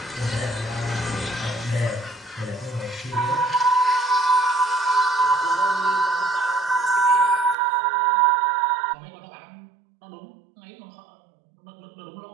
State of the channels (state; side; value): drops out; left; at 7.6 s